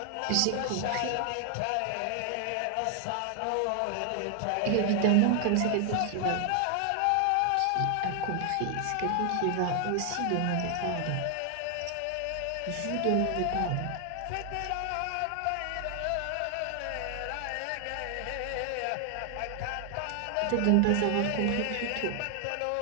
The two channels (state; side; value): different; both; correlation 0.00